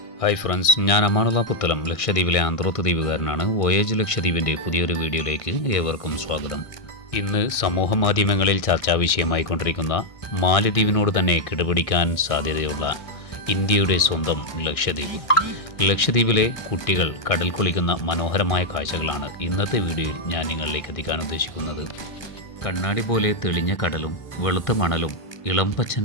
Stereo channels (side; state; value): right; late; 1.6 ms